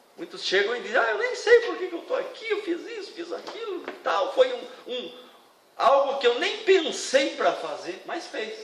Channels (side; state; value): both; identical; correlation 1.00